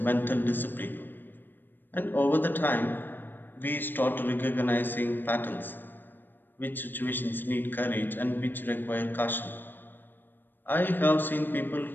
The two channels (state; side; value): late; right; 0.094 ms